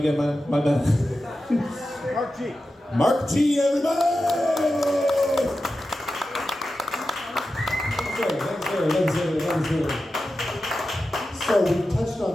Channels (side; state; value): both; normal; correlation 0.92